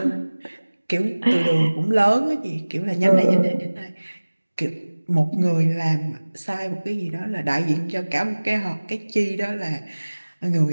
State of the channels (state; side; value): inverted; both; correlation -1.00